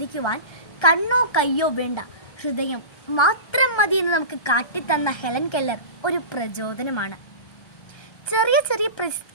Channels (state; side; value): late; right; 1.3 ms